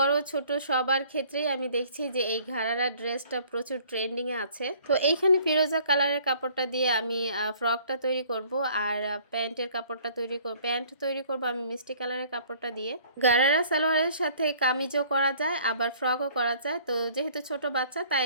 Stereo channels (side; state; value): both; inverted; correlation -0.55